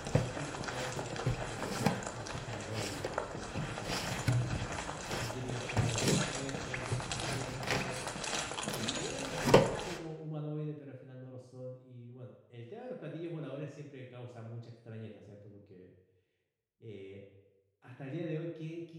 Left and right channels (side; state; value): both; identical; correlation 1.00